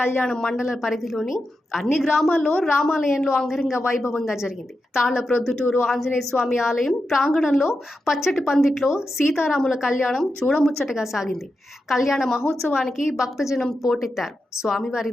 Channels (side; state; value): both; normal; correlation 0.89